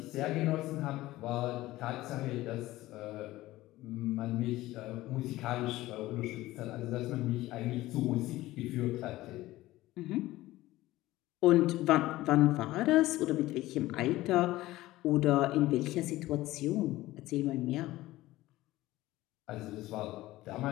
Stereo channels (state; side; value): quieter; right; 17.1 dB